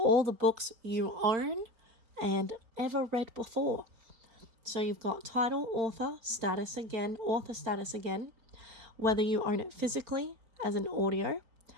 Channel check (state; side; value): late; left; 4.4 ms